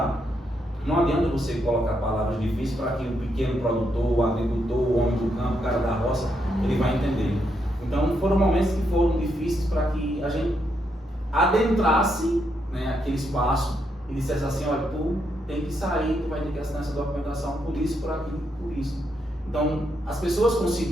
não adianta você colocar palavras difíceis para que o pequeno produtor, o agricultor, o homem do campo, o cara da roça, ele vai entender. Então, foram momentos que foram difíceis para que a gente adentrasse, né, aquele espaço e dissesse assim, olha, tu tem que sair, tu vai ter que assinar essa documentação por isso, por aquilo, por isso. Então, as pessoas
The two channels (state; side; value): normal; both; correlation 0.79